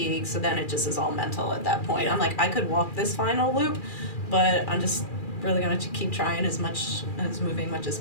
So then it just is all mental at that point. I'm like, I could walk this final loop, but I'm just really going to keep trying as moving much as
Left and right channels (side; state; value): right; late; 2.4 ms